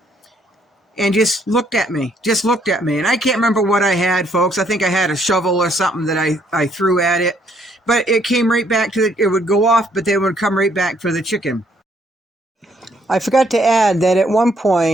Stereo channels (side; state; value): both; normal; correlation 0.68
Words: and just looked at me. And I can't remember what I had, folks. I think I had a shovel or something that I threw at it, but it came right back to it would go off, but they would come right back for the chicken. I forgot to add that at one